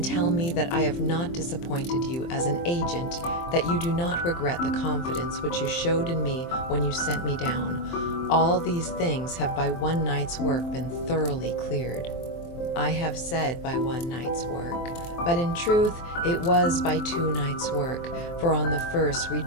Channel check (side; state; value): right; late; 23 ms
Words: tell me that I have not disappointed you as an agent, that you do not regret the confidence which you showed in me when you sent me down. All these things have by one night's work been thoroughly cleared. I have said by one night's work, but in truth it was by 2 nights' work, for on the first we